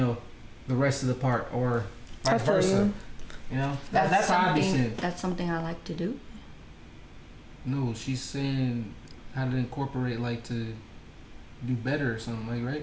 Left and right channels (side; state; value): both; identical; correlation 1.00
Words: rest of the part, or vice versa. You know, that's how I be saying. That's something I like to do. No, she's saying how to incorporate, like to do better or something, like,